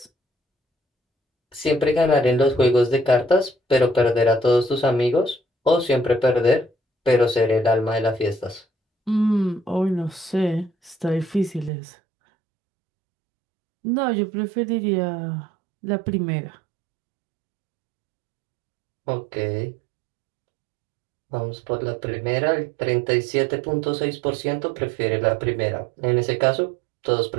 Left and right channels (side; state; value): left; drops out; at 11.7 s